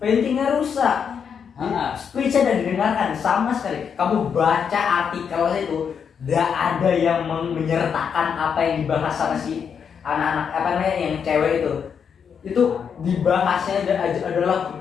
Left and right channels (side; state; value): right; quieter; 7.0 dB